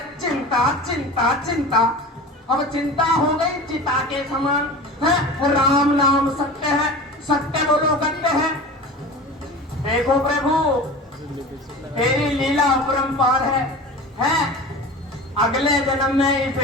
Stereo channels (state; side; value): normal; both; correlation 0.35